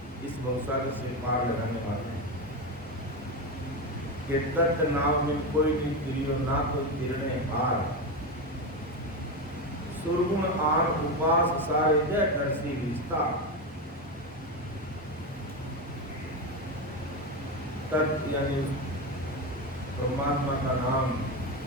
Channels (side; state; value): both; normal; correlation 0.15